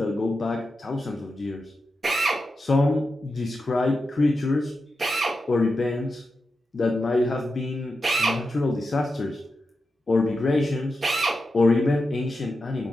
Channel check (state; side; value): normal; both; correlation 0.89